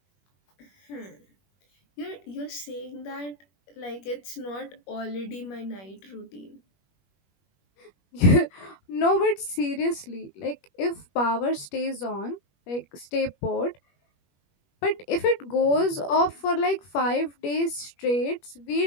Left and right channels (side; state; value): right; late; 21 ms